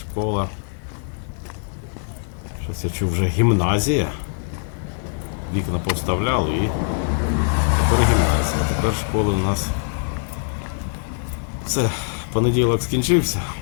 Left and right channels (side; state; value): right; silent; digital silence